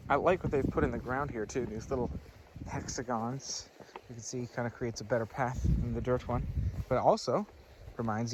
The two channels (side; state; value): both; identical; correlation 1.00